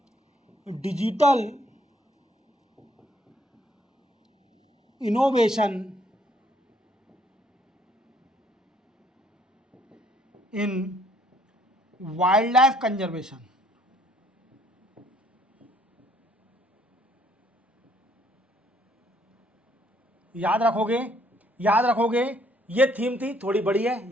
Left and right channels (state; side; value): normal; both; correlation 0.65